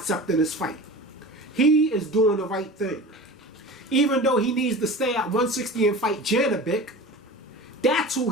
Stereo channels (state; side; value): normal; both; correlation 0.35